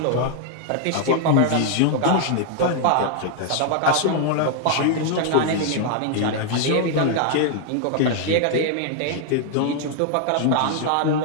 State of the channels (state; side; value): different; both; correlation 0.00